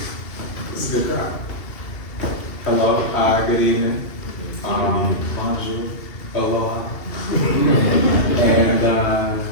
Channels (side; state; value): right; late; 2.8 ms